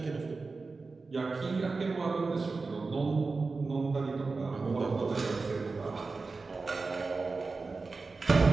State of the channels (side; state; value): left; quieter; 4.0 dB